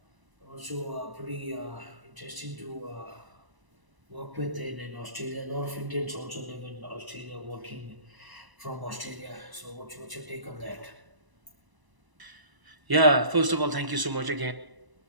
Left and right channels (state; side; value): late; left; 1.0 ms